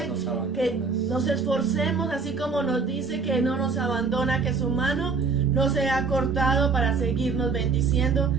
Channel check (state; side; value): quieter; left; 4.7 dB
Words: que nos esforcemos, así como nos dice que no nos abandona, que su mano no se ha cortado para seguirnos bendiciendo,